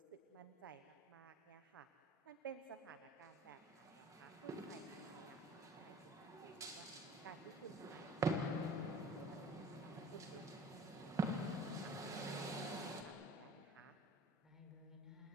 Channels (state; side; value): normal; both; correlation 0.46